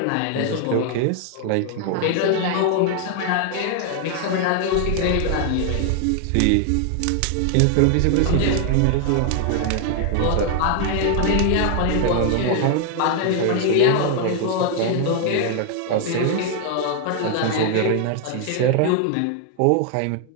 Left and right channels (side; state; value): both; different; correlation 0.00